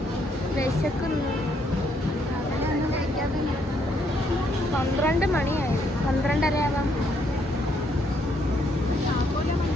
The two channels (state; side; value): normal; both; correlation 0.72